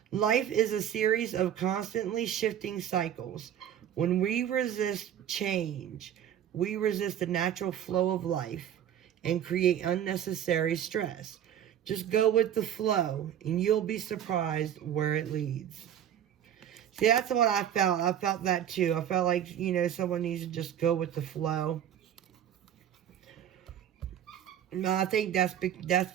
Life is a series of constantly shifting cycles. When we resist change, we resist the natural flow of life and create unnecessary stress. Just go with the flow, and you'll be surprised where it leads. See, that's what I felt. I felt that too. I felt like, someone needs to just go with the flow. No, I think that's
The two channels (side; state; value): left; quieter; 10.1 dB